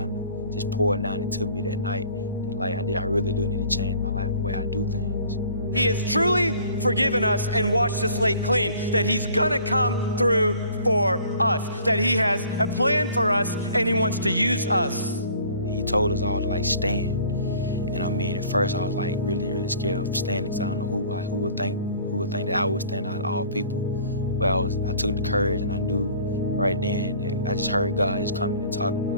of just poured down into me that night that like I really do need to change my life and the way I do things. He has truly forgiven us and washed the slate clean, that he's gonna come through for us, that he has a plan for us and he wants to use us. He told us all to like stand. And I mean, at first I was like really scared of standing because I don't know who would think that I would stand out of all people. But I took the courage and I knew right then that I just heard God just coming and talking to me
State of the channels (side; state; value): both; inverted; correlation -0.52